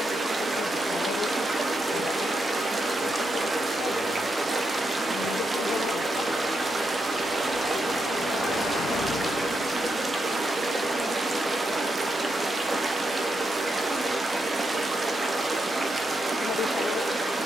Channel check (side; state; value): both; normal; correlation 0.83